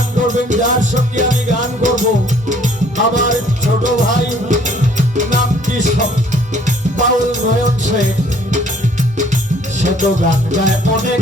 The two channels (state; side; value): normal; both; correlation 0.59